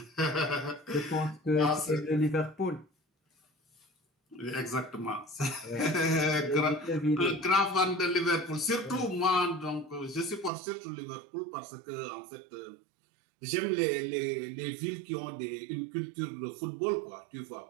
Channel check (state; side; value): drops out; left; at 10.5 s